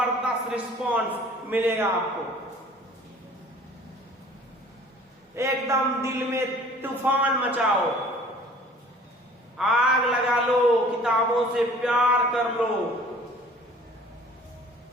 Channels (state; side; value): normal; both; correlation 0.50